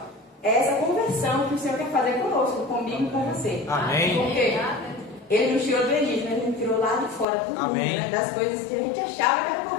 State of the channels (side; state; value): right; drops out; at 7.2 s